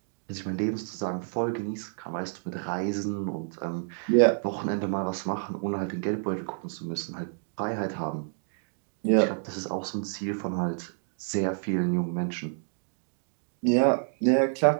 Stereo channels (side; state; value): left; silent; digital silence